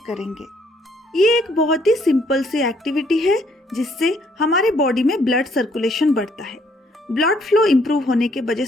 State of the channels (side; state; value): both; normal; correlation 0.67